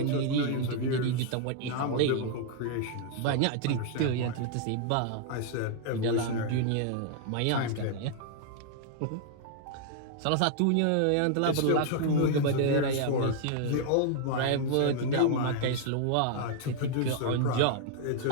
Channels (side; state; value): both; different; correlation 0.00